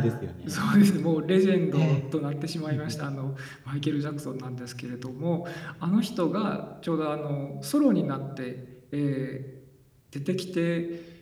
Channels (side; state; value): both; identical; correlation 1.00